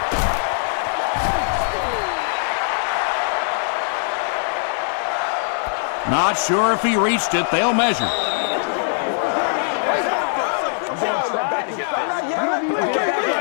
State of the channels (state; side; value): silent; right; 60 dB below the other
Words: Not sure if he reached it. They'll measure.